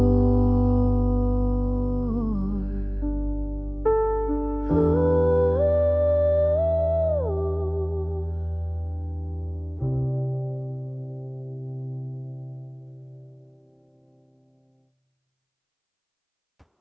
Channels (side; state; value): both; identical; correlation 1.00